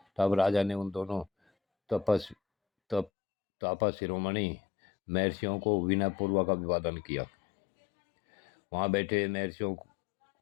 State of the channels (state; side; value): drops out; right; at 3.1 s